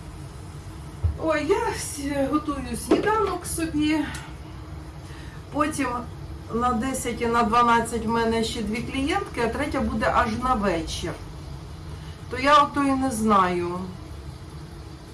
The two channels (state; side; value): identical; both; correlation 1.00